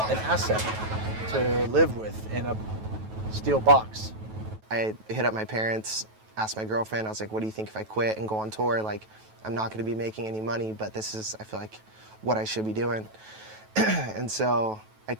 asset to live with in a steel box. I hit up my parents, asked my girlfriend, I was like, what do you think if I quit and go on tour? Like, I'm not gonna be making any money, but this is, I feel like, what I should be doing. And so I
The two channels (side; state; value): left; late; 9.2 ms